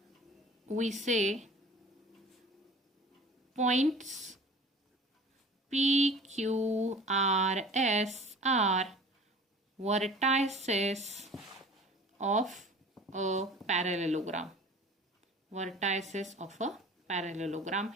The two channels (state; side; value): normal; both; correlation 0.44